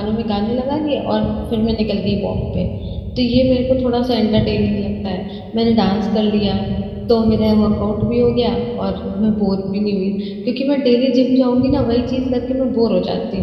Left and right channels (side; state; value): both; identical; correlation 1.00